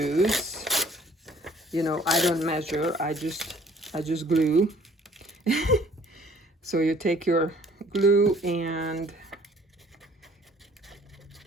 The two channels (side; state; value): both; normal; correlation 0.56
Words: I don't measure, I just glue. So you take your glue and